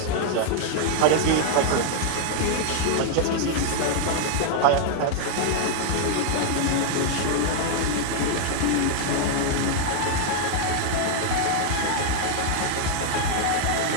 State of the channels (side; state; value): both; different; correlation 0.00